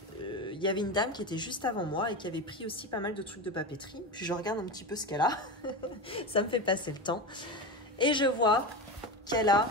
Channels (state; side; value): normal; both; correlation 0.21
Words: Il y avait une dame qui était juste avant moi et qui avait pris aussi pas mal de trucs de papeterie. Puis je regarde un petit peu ce qu'elle a. Ça me fait passer le temps. Et je vois qu'elle a